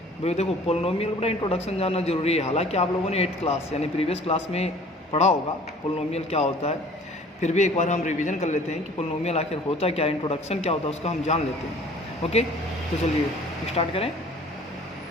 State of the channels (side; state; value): both; normal; correlation 0.50